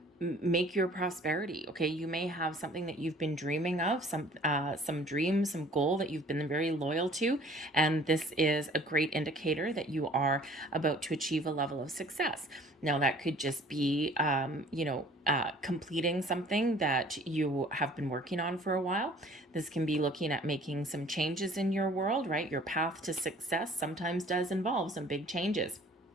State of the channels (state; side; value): normal; both; correlation 0.53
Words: make your prosperity. Okay. You may have something that you've been dreaming of, some dream, some goal that you've been very loyal to. And this is a great indicator that you are about to achieve a level of success. Now that could just be, completing something that you have been working on for a while. This can be looking at making some changes in your world, right? Your path to success sometimes does involve some big changes.